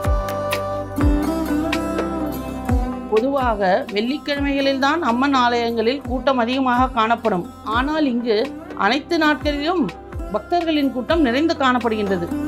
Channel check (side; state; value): both; identical; correlation 1.00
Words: பொதுவாக வெள்ளிக்கிழமைகளில்தான் அம்மன் ஆலயங்களில் கூட்டம் அதிகமாக காணப்படும். ஆனால் இங்கு அனைத்து நாட்களிலும் பக்தர்களின் கூட்டம் நிறைந்து காணப்படுகின்றது.